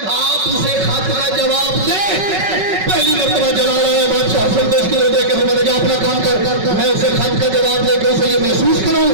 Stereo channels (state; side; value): late; left; 5.3 ms